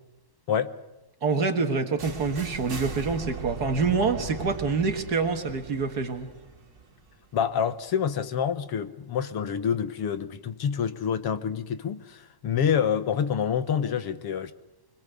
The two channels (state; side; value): late; right; 1.1 ms